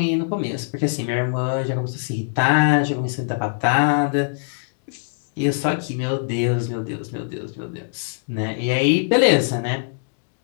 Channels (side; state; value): right; silent; digital silence